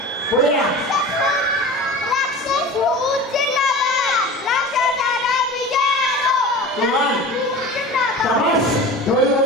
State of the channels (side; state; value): both; normal; correlation 0.35